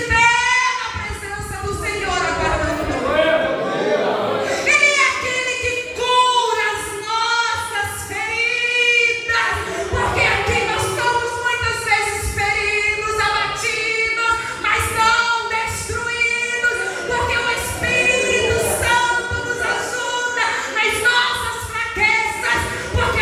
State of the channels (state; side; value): identical; both; correlation 1.00